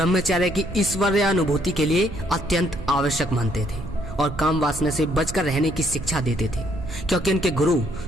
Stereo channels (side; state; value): right; noise; rumble, 11 dB below the sound